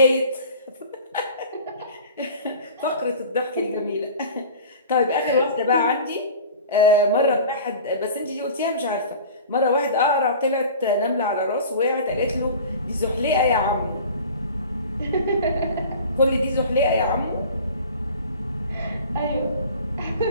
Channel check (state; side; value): inverted; both; correlation -0.41